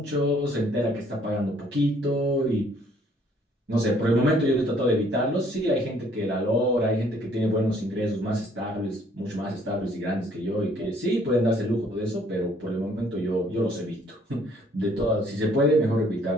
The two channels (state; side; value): normal; both; correlation 0.62